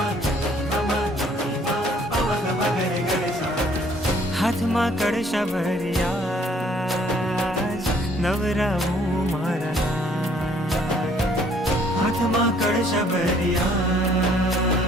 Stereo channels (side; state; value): both; normal; correlation 0.61